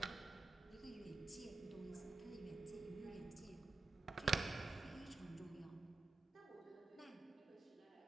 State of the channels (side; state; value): left; quieter; 3.7 dB